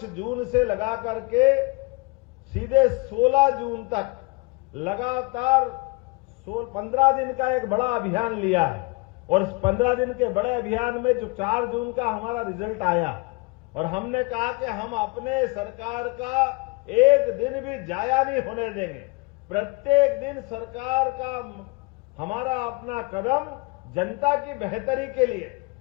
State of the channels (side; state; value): right; quieter; 26.6 dB